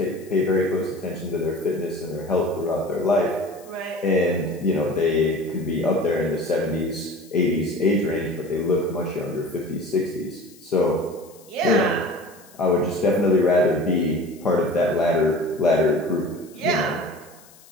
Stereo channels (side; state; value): left; noise; hiss, 25 dB below the sound